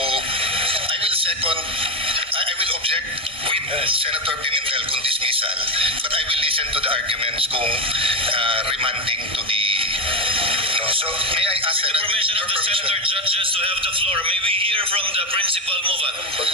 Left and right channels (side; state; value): left; late; 1.6 ms